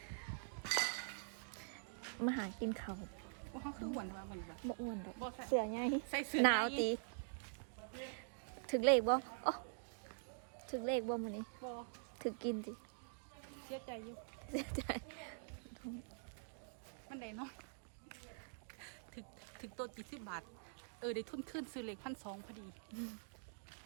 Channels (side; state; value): left; silent; digital silence